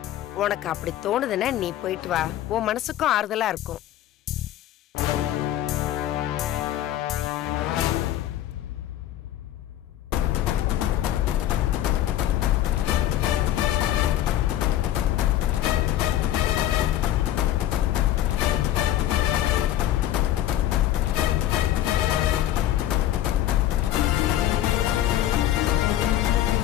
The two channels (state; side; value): quieter; right; 12.7 dB